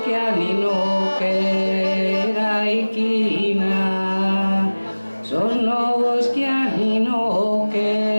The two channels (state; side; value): inverted; both; correlation -1.00